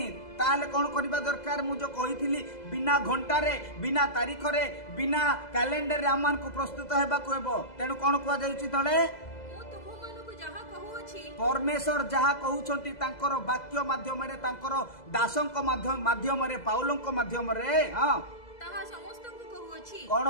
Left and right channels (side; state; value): right; late; 2.0 ms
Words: ताले कौन करबा दरकार मु जो कहिथिली बिना घंटा रे, बिना तारीख रे, बिना कैलेंडर रे आमान को प्रस्तुत हेबा को हेबो। तेनु कौन कुआ जाउची तळे परमेश्वर जहा कहउछंती तांकर वाक्य माध्यम रे, तांकर दासंक माध्यम रे, पाउलंक माध्यम रे, हां ताहा समस्त को कहउछि। कौन